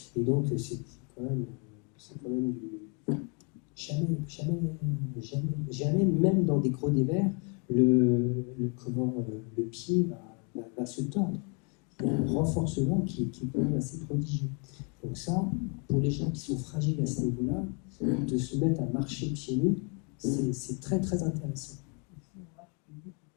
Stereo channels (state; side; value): quieter; right; 36.1 dB